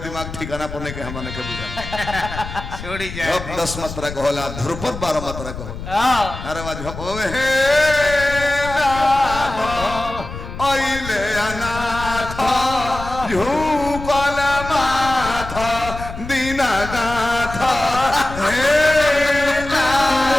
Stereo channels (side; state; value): left; noise; rumble, 10 dB below the sound